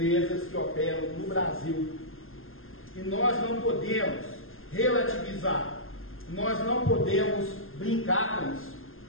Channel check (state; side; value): late; right; 0.60 ms